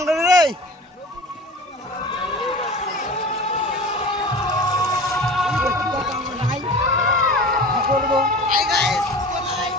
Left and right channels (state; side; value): normal; both; correlation 0.37